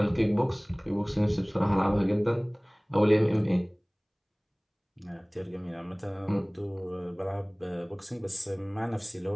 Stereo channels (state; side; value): identical; both; correlation 1.00